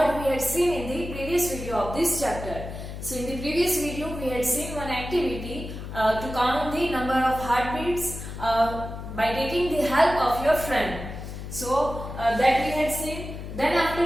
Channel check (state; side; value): noise; left; hum, 9 dB below the sound